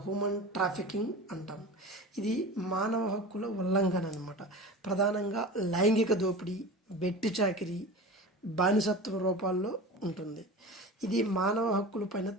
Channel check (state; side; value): normal; both; correlation 0.33